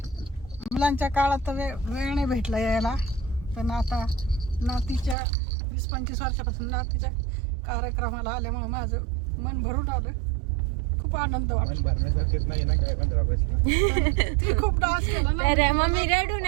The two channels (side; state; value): left; drops out; at 5.2 s